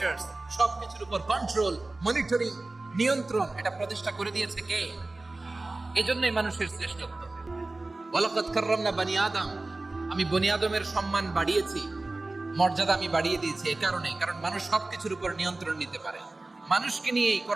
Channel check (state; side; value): quieter; left; 3.1 dB